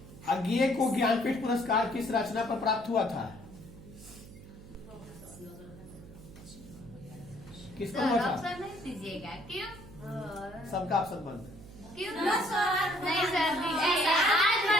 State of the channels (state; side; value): noise; right; hum, 18 dB below the sound